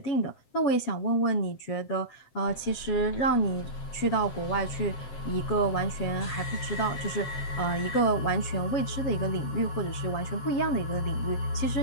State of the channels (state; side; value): late; right; 7.8 ms